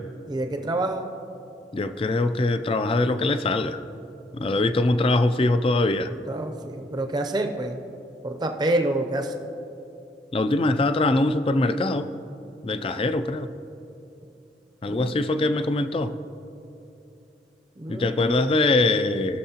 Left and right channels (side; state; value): both; normal; correlation 0.65